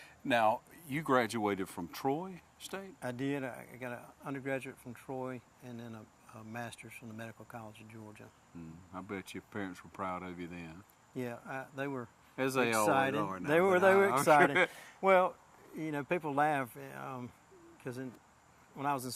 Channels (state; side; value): identical; both; correlation 1.00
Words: Now, you graduated from Troy State? I did. I got an undergraduate from Troy and then a master's from the Medical College of Georgia. I bet your parents were proud of you then. Yeah, they were As they excited. Always are now, they were excited. Sure. Well, you know, people laugh because when I was in